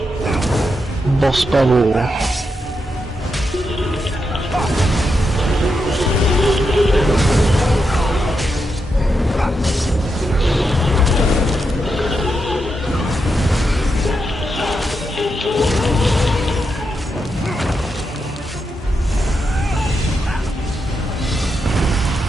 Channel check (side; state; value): both; normal; correlation 0.85